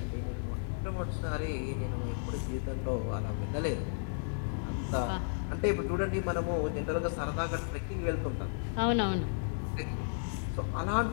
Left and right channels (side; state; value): right; silent; digital silence